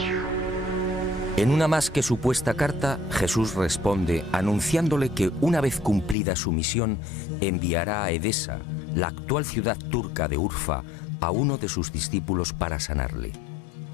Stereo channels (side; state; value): right; drops out; at 6.2 s